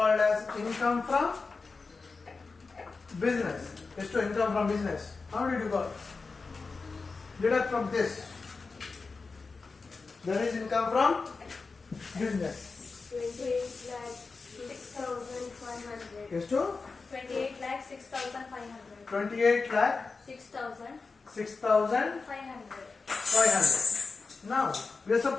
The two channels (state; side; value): quieter; right; 4.3 dB